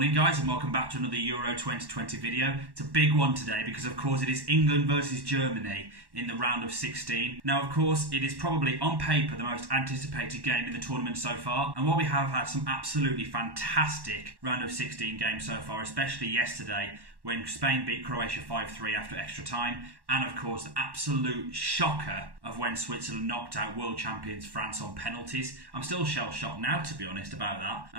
guys, and welcome back to another Euro 2020 video. It's a big one today because of course it is England versus Germany in the round of 16. Now of course it is probably on paper the most anticipated game in the tournament so far, and while we have had some absolutely fantastic round of 16 games so far, especially yesterday when Spain beat Croatia 5-3 after extra time, and of course the absolute shocker of when Switzerland knocked out world champions France on penalties. I'm still shell-shocked now, to be honest, about that,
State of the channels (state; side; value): late; left; 1.1 ms